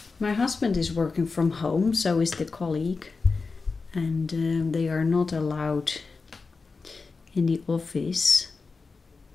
My husband is working from home, so is the colleague, and they are not allowed in the office.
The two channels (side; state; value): right; quieter; 4.3 dB